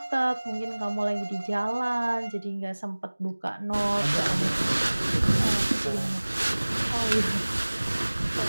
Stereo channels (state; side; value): inverted; both; correlation -1.00